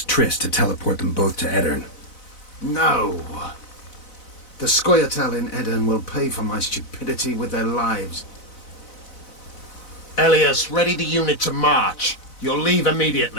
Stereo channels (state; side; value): late; right; 4.0 ms